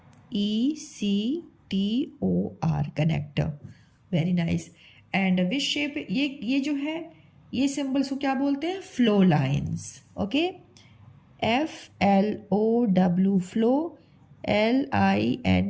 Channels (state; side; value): identical; both; correlation 1.00